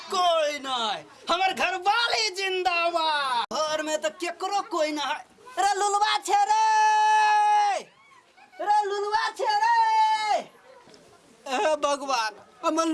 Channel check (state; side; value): identical; both; correlation 1.00